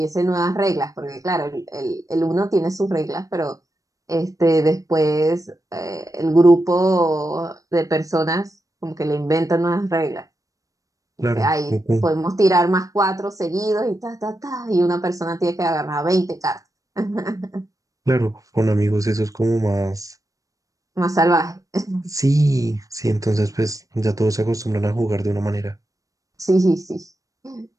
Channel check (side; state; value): left; late; 0.16 ms